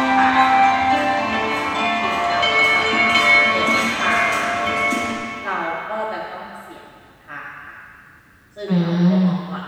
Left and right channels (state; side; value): identical; both; correlation 1.00